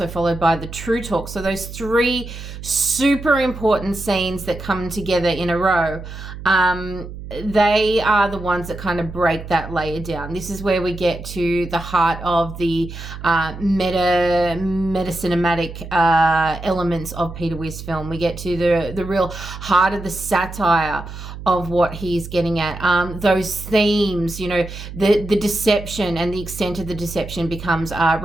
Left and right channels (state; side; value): noise; right; hum, 11 dB below the sound